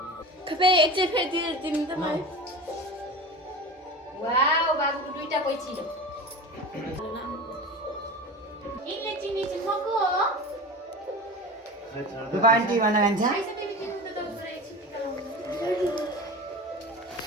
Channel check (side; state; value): both; normal; correlation 0.31